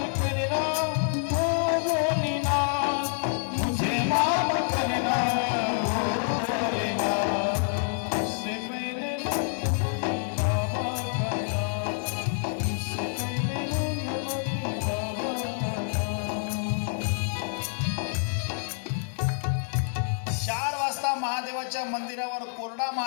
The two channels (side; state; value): right; silent; digital silence